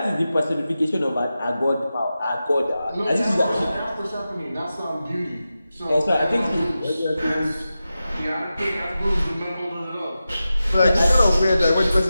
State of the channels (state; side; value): inverted; both; correlation -0.93